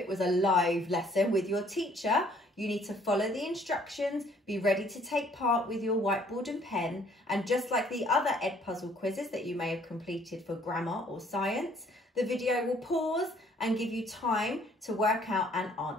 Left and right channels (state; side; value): normal; both; correlation 0.61